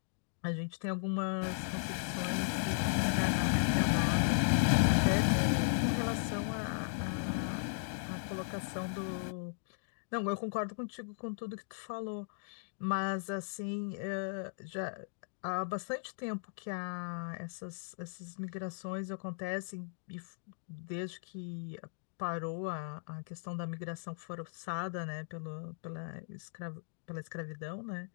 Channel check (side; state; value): right; silent; digital silence